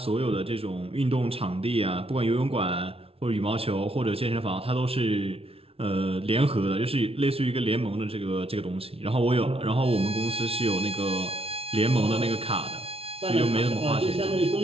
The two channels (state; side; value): late; left; 0.27 ms